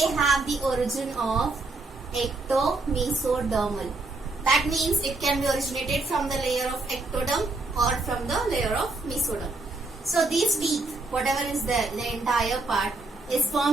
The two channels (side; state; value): left; quieter; 3.2 dB